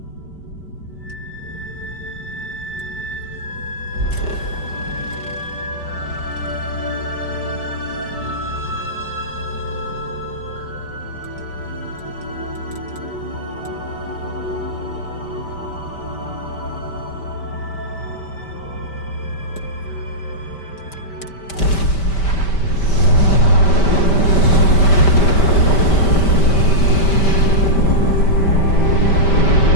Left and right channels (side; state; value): right; late; 5.1 ms